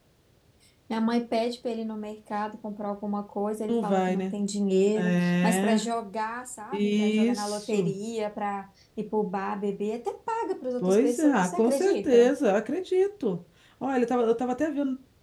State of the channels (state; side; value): identical; both; correlation 1.00